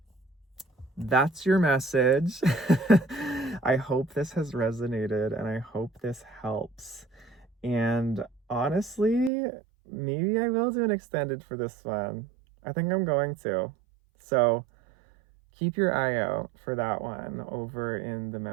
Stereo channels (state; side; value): drops out; left; at 9.3 s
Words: that's your message. I hope this has resonated, and I hope this helps. And honestly, maybe I will do an extended for this one. I think I'm going to. So keep your eye out for that one over in the